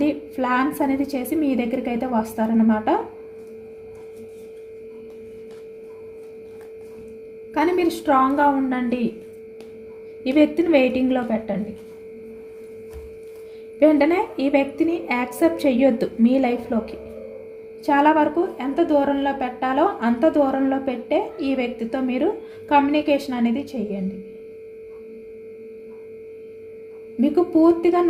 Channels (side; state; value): both; identical; correlation 1.00